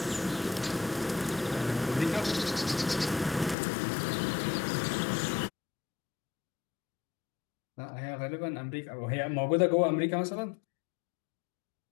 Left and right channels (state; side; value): drops out; right; at 3.6 s